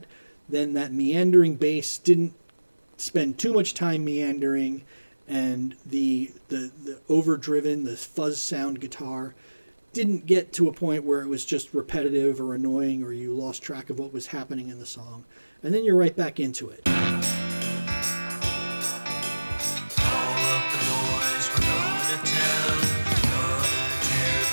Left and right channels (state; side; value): inverted; both; correlation -1.00